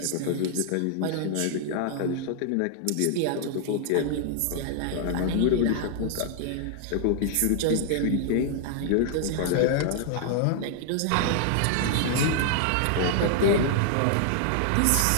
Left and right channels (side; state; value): both; different; correlation 0.00